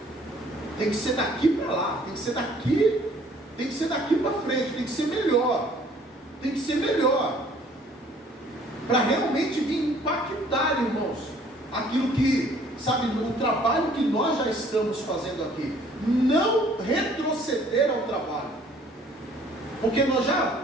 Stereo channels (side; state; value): both; normal; correlation 0.57